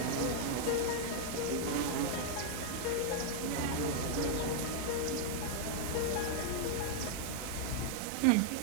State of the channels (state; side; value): different; both; correlation -0.01